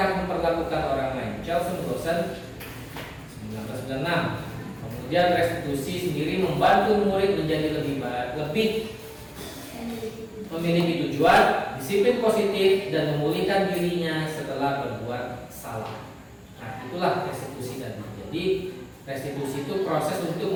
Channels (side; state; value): both; identical; correlation 1.00